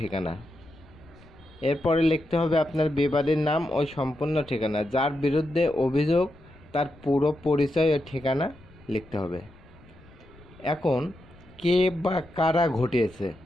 এরপরে লিখতে হবে আপনার বিবাদের নাম ও সম্পূর্ণ ঠিকানা, যার বিরুদ্ধে অভিযোগ তার পুরো পরিচয় ও ঠিকানা লিখতে হবে। এখন কে বা কারা ঘটিয়েছে,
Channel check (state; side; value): noise; left; rumble, 25 dB below the sound